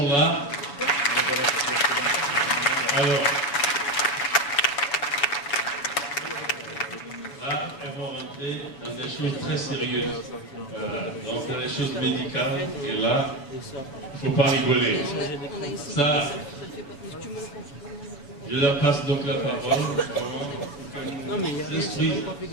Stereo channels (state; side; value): late; right; 7.0 ms